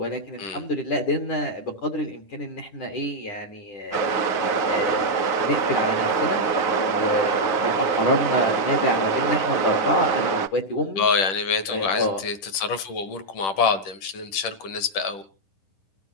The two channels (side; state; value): right; late; 10 ms